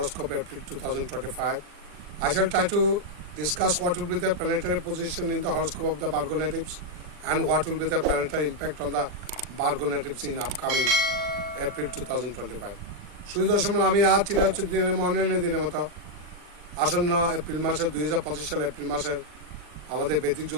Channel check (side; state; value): left; late; 40 ms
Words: April 2025. I shall try to discuss what will be the planetary position in the horoscope of the Virgo natives and what will be the planetary impact on the Virgo natives in upcoming April 2025. সুদর্শন আমি আজ চিরাচর দিনের মনের দিনের মতো আসন্ন April মাসের 2025 সালে April মাসের আমাদের বৈদিক